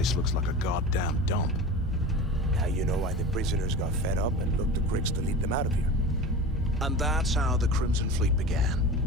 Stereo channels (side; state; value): both; normal; correlation 0.32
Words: looks like a goddamn dump. Now you know why the prisoners got fed up and looked to Griggs to lead them out of here. And that's how the Crimson Fleet began.